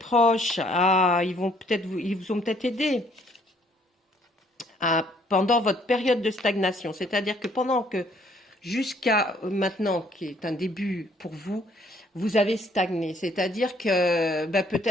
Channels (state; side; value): normal; both; correlation 0.63